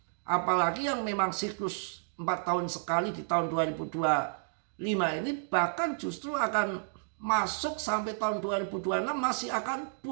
Apalagi yang memang siklus 4 tahun sekali di tahun 2025 ini, bahkan justru akan masuk sampai tahun 2026 masih akan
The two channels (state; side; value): silent; left; digital silence